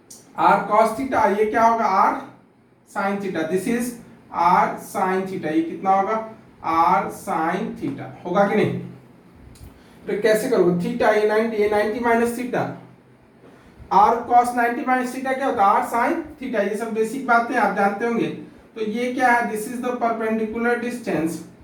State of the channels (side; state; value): both; identical; correlation 1.00